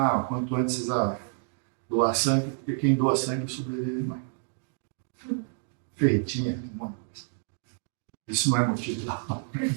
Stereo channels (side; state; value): left; silent; 59 dB below the other